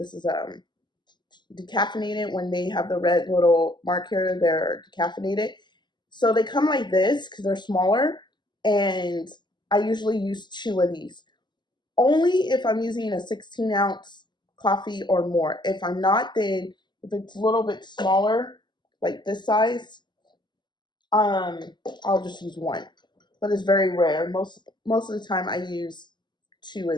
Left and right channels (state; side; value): late; right; 0.21 ms